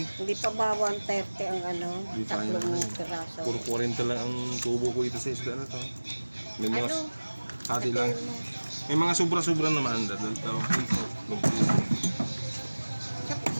Hindi pa ba 130 ang ano? Hindi pa yan. Tatlong piraso. Puro 40 lang ang tubo ko ito sa isda na to. May mga Ano? hati lang. Sabihin mo. May mga sobra-sobra naman. Dalawang piso. Sa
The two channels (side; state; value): both; inverted; correlation -1.00